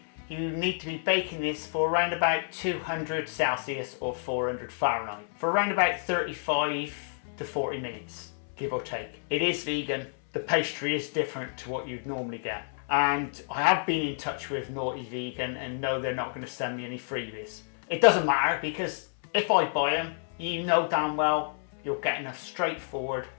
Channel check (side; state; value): right; silent; 58 dB below the other